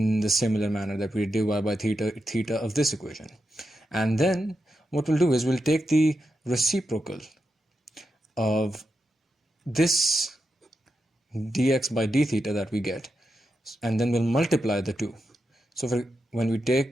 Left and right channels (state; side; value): normal; both; correlation 0.87